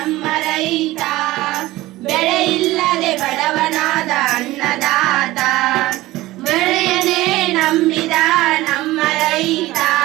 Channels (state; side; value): quieter; left; 17.9 dB